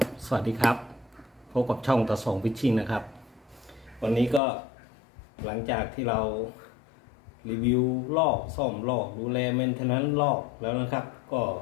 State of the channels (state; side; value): drops out; right; at 4.4 s